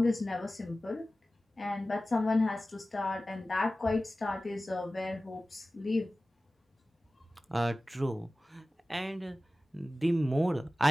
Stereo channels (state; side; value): normal; both; correlation 0.96